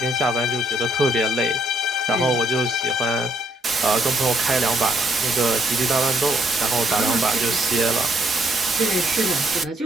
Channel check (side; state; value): both; normal; correlation 0.70